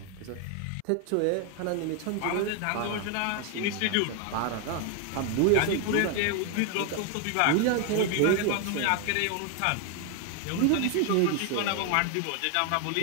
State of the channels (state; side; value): different; both; correlation 0.01